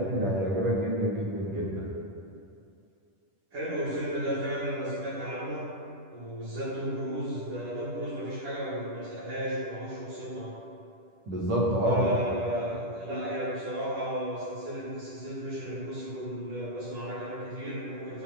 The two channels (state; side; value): late; left; 10 ms